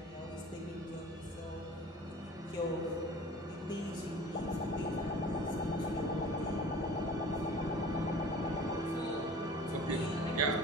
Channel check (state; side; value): normal; both; correlation 0.43